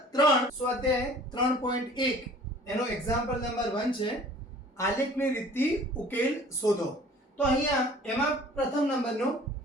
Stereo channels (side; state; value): both; normal; correlation 0.49